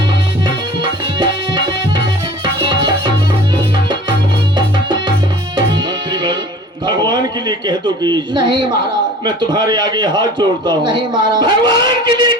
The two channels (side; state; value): both; normal; correlation 0.44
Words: भगवान के लिए कह दो कि नहीं महाराज। मैं तुम्हारे आगे हाथ जोड़ता हूँ। नहीं महाराज। भगवान के लिए